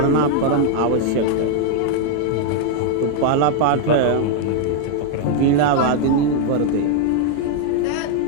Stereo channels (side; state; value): both; different; correlation 0.00